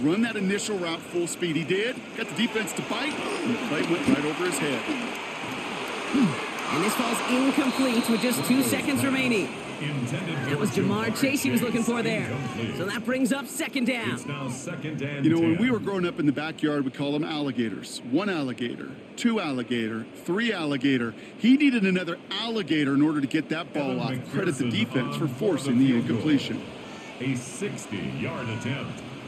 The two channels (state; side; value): identical; both; correlation 1.00